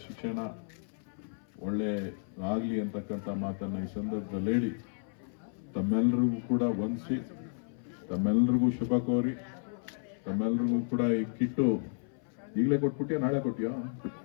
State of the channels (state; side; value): silent; right; 56 dB below the other